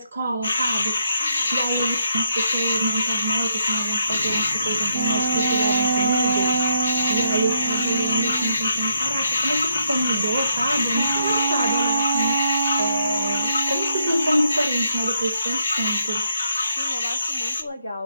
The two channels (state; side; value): inverted; both; correlation -0.76